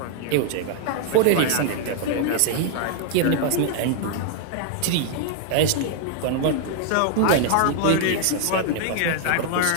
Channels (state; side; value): different; both; correlation 0.00